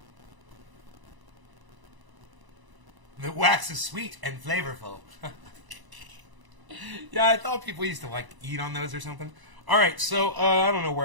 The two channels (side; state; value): left; late; 1.0 ms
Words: The wax is sweet and flavorful. Yeah, I thought people used to, like, eat on those or something. Alright, so, I don't know